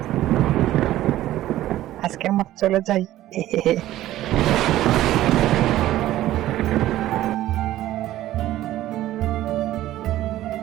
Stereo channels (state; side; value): quieter; left; 14.4 dB